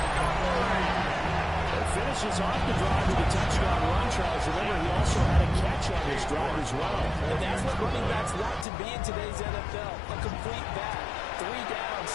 Finishes off the drive with a touchdown run, Charles. Remember, he also had a catch on this drive as well. And that's what running backs want to be in today's NFL. A complete back. 3 down,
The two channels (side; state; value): right; drops out; at 8.7 s